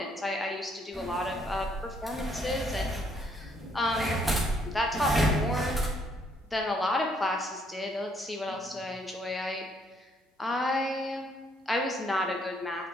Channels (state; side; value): normal; both; correlation 0.69